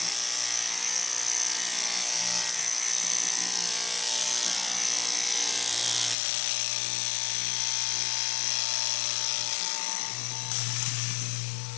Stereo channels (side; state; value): right; drops out; at 6.2 s